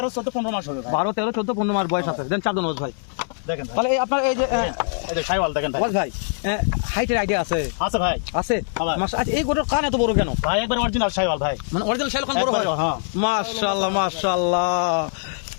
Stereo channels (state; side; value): silent; right; digital silence